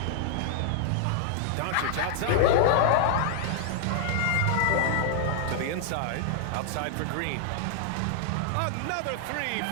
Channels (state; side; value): different; both; correlation -0.01